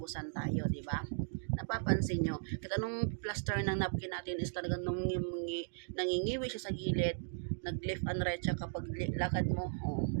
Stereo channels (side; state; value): left; silent; digital silence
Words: tayo, di ba? Napapansin nyo, kahit anong plaster ng napkin natin is talagang nangingiwi siya sa gilid, nag-left and right siya kapag lakad mo,